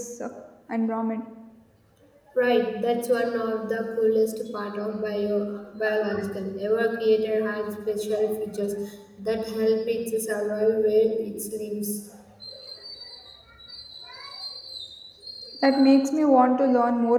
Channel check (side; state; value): both; identical; correlation 1.00